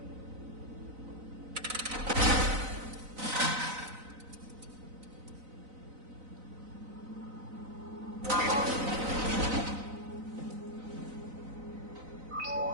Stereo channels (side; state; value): left; late; 4.0 ms